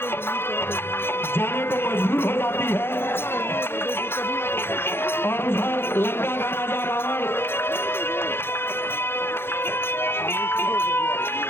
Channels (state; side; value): late; right; 0.11 ms